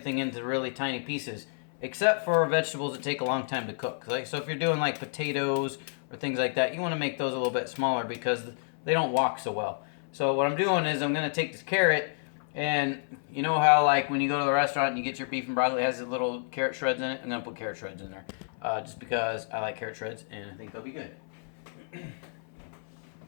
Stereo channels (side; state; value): right; silent; 56 dB below the other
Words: into really tiny pieces, except for vegetables that take a long time to cook. Like, so if you're doing like potatoes or things like that, you want to make those a little bit smaller because they don't walk so well. So what I'm doing is I'm going to take this carrot. And you know how, like, when you go to the restaurant and you get your beef and broccoli, it has the little carrot shreds in it? I'm going to put carrot shreds in there. Just because I like carrot shreds and I think they'll be good.